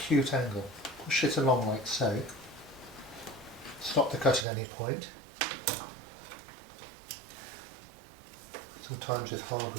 angle. Push it along like so. Stop the cut at any point. Sometimes with hardwood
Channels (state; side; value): drops out; left; at 4.5 s